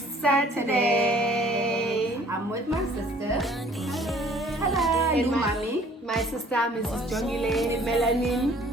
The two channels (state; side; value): normal; both; correlation 0.55